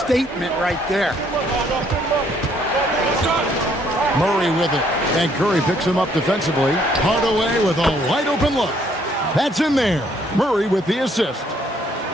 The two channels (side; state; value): both; normal; correlation 0.66